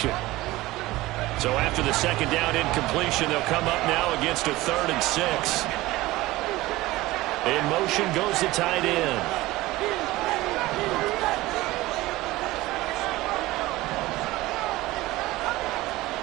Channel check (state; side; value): quieter; left; 18.6 dB